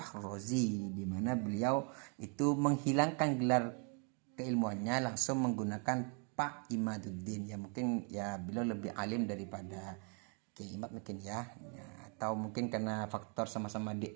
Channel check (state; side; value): quieter; left; 38.3 dB